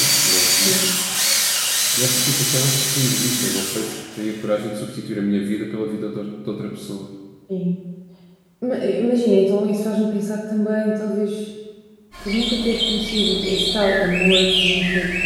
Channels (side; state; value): both; identical; correlation 1.00